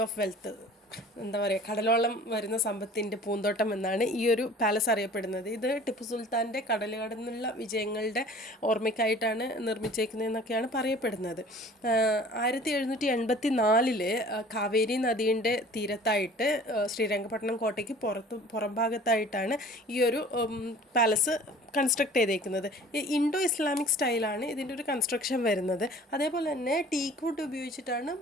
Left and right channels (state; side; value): normal; both; correlation 0.47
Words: of wealth, എന്താ പറയുക, കടലോളം വരുന്ന സമ്പത്തിൻ്റെ പൂന്തോട്ടം എന്നാണ് ഈ ഒരു പാലസ് അറിയപ്പെടുന്നത്. ഇത് ടിപ്പു സുൽത്താൻ്റെ കടൽ കടന്നുള്ള വിജയങ്ങളുടെ ഓർമ്മയ്ക്കായിട്ടാണ് നിർമ്മിച്ചേക്കുന്നതെന്നൊക്കെയാണ് പറയപ്പെടുന്നത്. 1784 കാവേരി നദീൻ്റെ തീരത്തായിട്ട് ശ്രീരംഗപട്ടണം കോട്ടയ്ക്ക് പുറം ഭാഗത്തായിട്ടാണ് ഈ ഒരു പാലസ് കൺസ്ട്രക്ട് ചെയ്തേക്കുന്നത്. ഇൻഡോ ഇസ്ലാമിക് സ്റ്റൈലാണ് ഇതിൻ്റെ ഒരു കൺസ്ട്രക്ഷൻ വരുന്നത്. അതേപോലെ തന്നെ ടീക്ക് വുഡ് ഉപയോഗിച്ചിട്ടാണ്